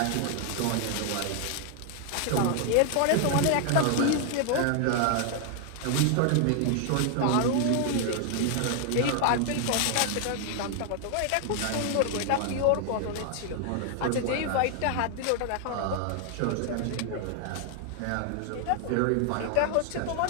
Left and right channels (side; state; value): both; different; correlation 0.00